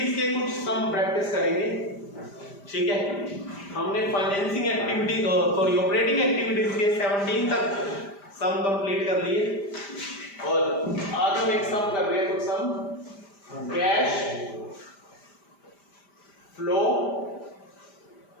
के कुछ सम प्रैक्टिस करेंगे। ठीक है, हमने फाइनेंसिंग एक्टिविटी ऑपरेटिंग एक्टिविटीज के 17 तक सम कंप्लीट कर लिए और आज हम एक सम कर रहे हैं, कुछ sum cash flow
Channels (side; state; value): right; late; 5.0 ms